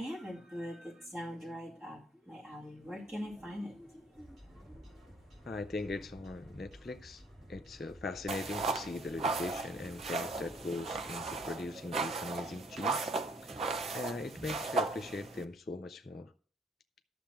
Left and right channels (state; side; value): normal; both; correlation 0.62